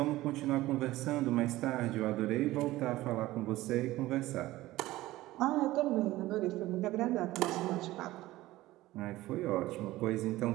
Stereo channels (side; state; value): left; quieter; 17.1 dB